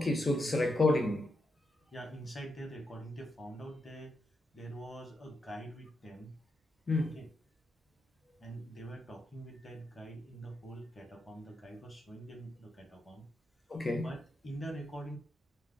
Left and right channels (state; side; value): normal; both; correlation 0.83